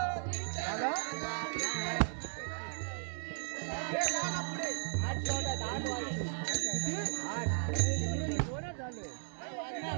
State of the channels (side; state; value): left; silent; digital silence